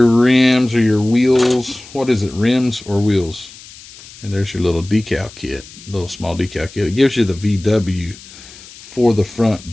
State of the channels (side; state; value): left; noise; hiss, 19 dB below the sound